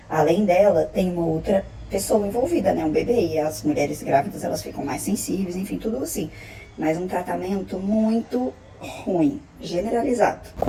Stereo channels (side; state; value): both; identical; correlation 1.00